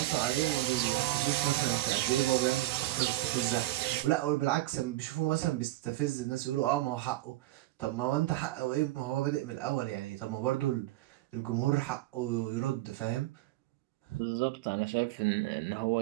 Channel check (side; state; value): left; quieter; 17.1 dB